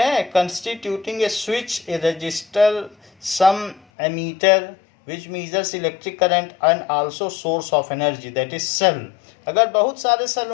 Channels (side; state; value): right; drops out; at 3.8 s